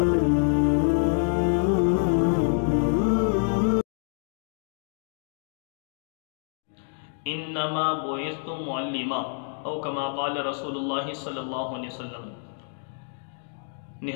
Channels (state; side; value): silent; right; digital silence